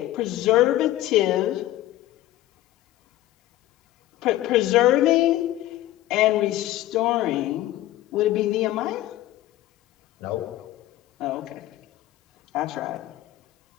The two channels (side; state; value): right; quieter; 15.0 dB